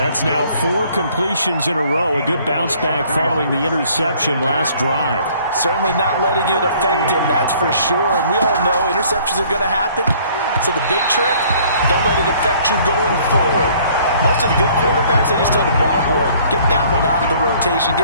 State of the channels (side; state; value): both; inverted; correlation -0.58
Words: now 4 completions in a row. A good bounce back following the interception last drive. Certainly not letting it affect him, that's for sure. And we all know interceptions are going to happen. So the big trick, don't let it affect you going forward. Most of the good quarterbacks, they just tell the ball boy, get that one out of the rotation,